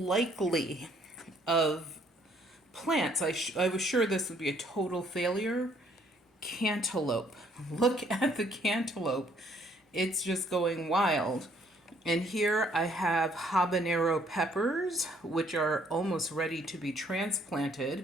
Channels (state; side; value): normal; both; correlation 0.64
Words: of plants, I was sure this would be a total failure. Cantaloupe. Look at the cantaloupe. It's just going wild. And here I have habanero peppers, which are almost ready to be